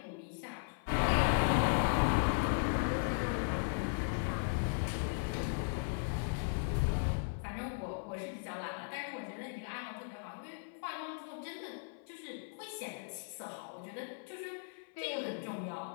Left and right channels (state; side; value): silent; right; 53 dB below the other